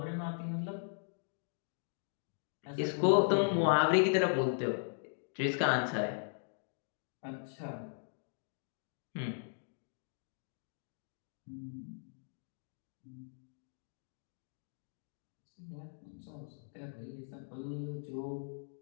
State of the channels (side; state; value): right; silent; digital silence